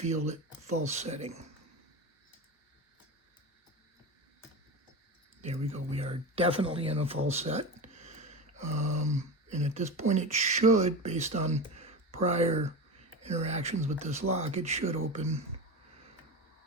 it false setting. There we go. We are definitely in a false set. And at this point it should, based on prior interactions with this lock, it should open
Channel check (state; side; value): normal; both; correlation 0.24